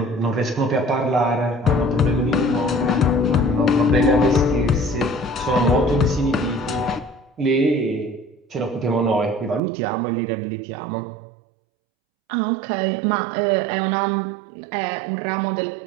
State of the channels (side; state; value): left; drops out; at 9.6 s